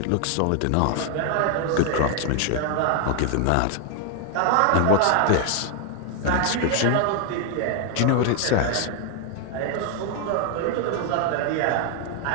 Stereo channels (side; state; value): both; different; correlation 0.00